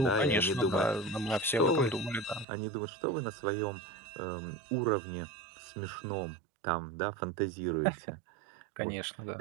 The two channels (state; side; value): drops out; left; at 2.5 s